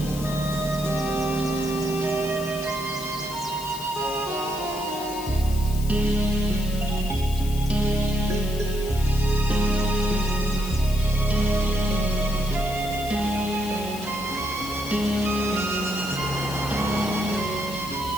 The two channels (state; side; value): noise; left; hiss, 13 dB below the sound